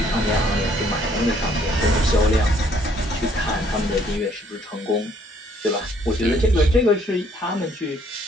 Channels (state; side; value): normal; both; correlation 0.64